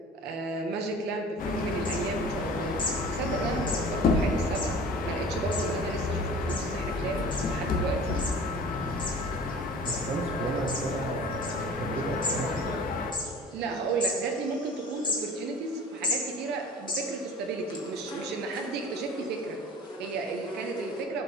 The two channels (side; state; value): both; normal; correlation 0.42